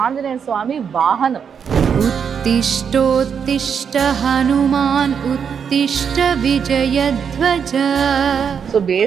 ఆంజనేయ స్వామి వాహనం. ఉత్తిష్టోత్తిష్ట హనుమాన్ ఉత్తిష్ట విజయధ్వజ. సో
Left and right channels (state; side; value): quieter; left; 7.1 dB